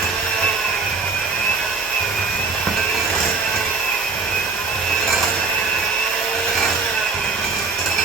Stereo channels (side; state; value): left; quieter; 4.2 dB